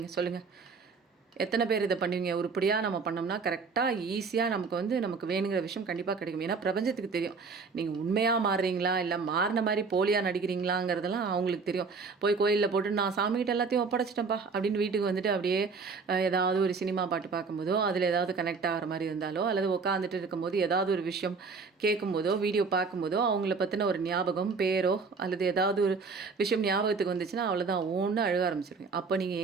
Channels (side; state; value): left; quieter; 4.8 dB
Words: சொல்லுங்கள்? எத்தனை பேர் இதை பண்ணுவீங்க? உருப்படியாக நம்ம பண்ணோம்னா கரெக்டாக ஈஸியாக நமக்கு வேணுங்கிற விஷயம் கண்டிப்பாக கிடைக்கும். ஏன்னா பிரபஞ்சத்துக்கு தெரியும் நீங்கள் உண்மையாக மாறுறீங்களா இல்லை மாறின மாதிரி போலியாக நடிக்கிறீங்களாங்கிறதெல்லாம் அவங்களுக்கு தெரியும். போய் கோயிலில் போட்டு நான் சாமிகிட்ட எல்லாத்தையும் ஒப்படைச்சிட்டேன்ப்பா அப்படின்னு வீட்டுக்கு வந்துட்டு அப்படியே ஏதாவது ஒரு சினிமா பாட்டு பார்க்கும்போதோ அதில் ஏதாவது கனெக்ட் ஆகிற மாதிரி இருந்தாலோ அல்லது உட்காந்துட்டு இருக்கும்போது ஏதாவது ஒரு விஷயம் கேட்கும்போதோ வீடியோ பார்க்கும்போதோ அவங்கள பற்றின ஒரு ஞாபகம், பேரோ அல்லது ஏதாவது ஒரு விஷயம் ஞாபகத்துக்கு வந்துச்சுன்னா அவ்வளோதான் ஒன்று அழுக ஆரம்பிச்சிருவீங்க. அப்போ